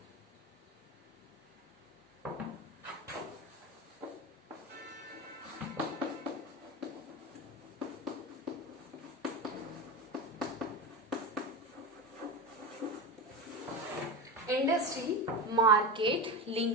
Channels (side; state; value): both; normal; correlation 0.21